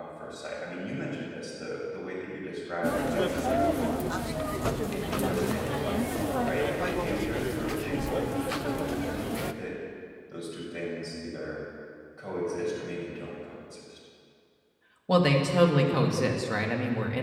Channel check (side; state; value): both; identical; correlation 1.00